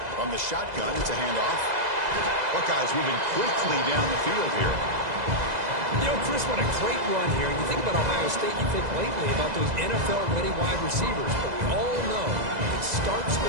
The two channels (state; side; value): late; left; 2.0 ms